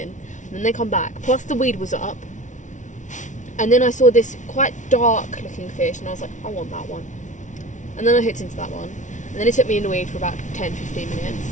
and then they come back. Plus the weed was up, and then I saw this quite dark looking fish, and I was like, I want that one. And then I hooked into that one, and then it took me in the weed for about 10-15 minutes,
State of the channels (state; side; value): late; right; 0.36 ms